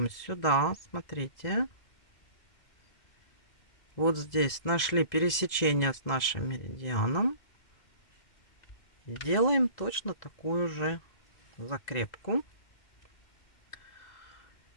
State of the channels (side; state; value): right; late; 2.0 ms